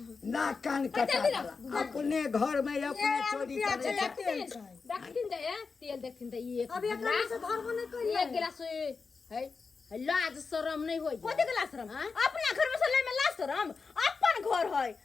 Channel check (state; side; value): quieter; right; 4.8 dB